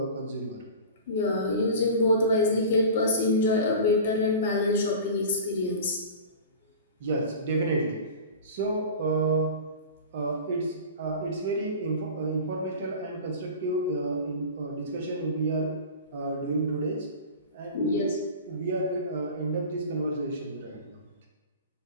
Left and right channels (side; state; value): both; inverted; correlation -0.36